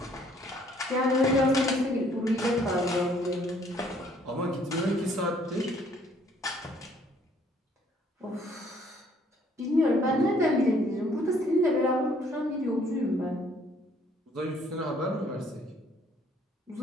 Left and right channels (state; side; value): normal; both; correlation 0.62